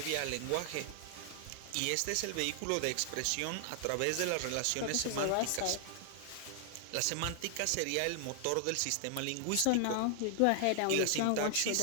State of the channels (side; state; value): both; different; correlation 0.00